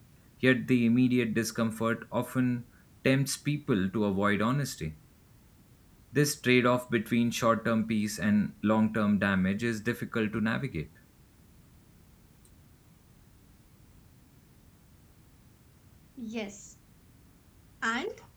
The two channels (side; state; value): both; identical; correlation 1.00